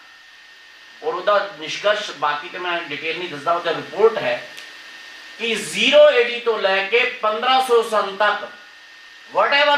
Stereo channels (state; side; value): identical; both; correlation 1.00